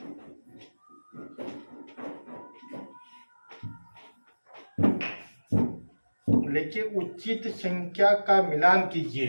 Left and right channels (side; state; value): both; inverted; correlation -1.00